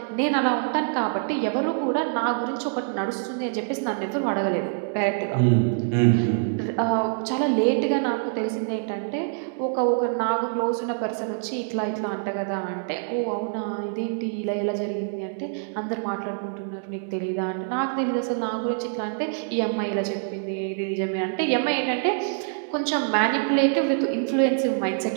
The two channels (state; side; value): silent; left; digital silence